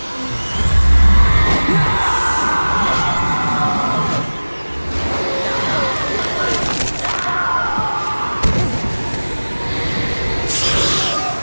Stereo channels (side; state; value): both; inverted; correlation -1.00